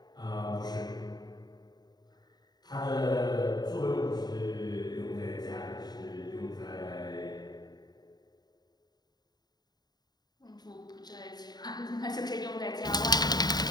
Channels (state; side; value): late; right; 0.20 ms